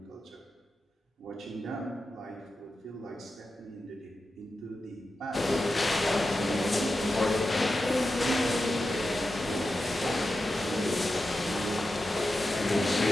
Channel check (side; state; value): both; normal; correlation 0.91